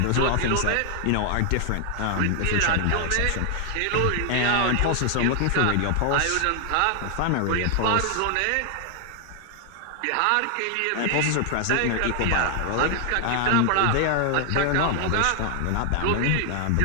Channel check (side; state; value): both; different; correlation 0.00